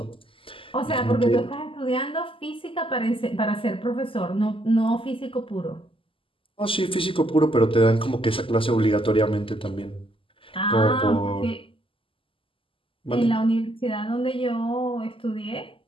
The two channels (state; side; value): late; right; 0.25 ms